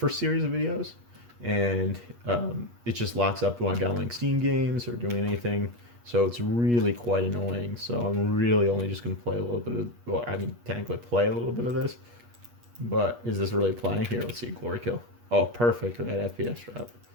series of videos, and it just locks up when I'm downloading Steam games or doing anything. So it's really quite annoying. So I'm really only just going to play a little bit of, well, I mean, technically play a little bit of this. But is this really playing? Here, let's see, Glory Kill. Oh, perfect with that FPS drop.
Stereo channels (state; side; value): late; left; 8.4 ms